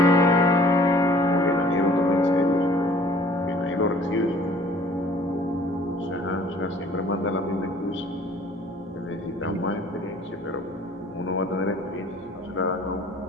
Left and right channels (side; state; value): right; noise; hum, 29 dB below the sound